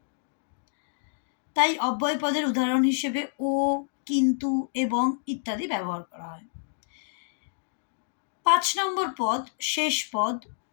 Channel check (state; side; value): silent; right; digital silence